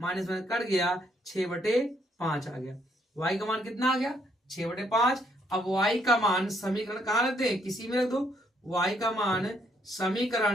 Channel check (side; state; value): both; normal; correlation 0.71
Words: माइनस में कट गया, 6/5 आ गया। y का मान कितना आ गया, 6/5। अब y का मान समीकरण कहाँ रखते हैं, किसी में रख दो। y का मान